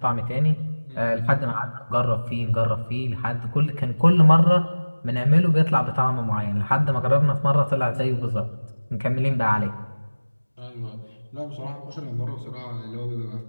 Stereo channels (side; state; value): both; inverted; correlation -1.00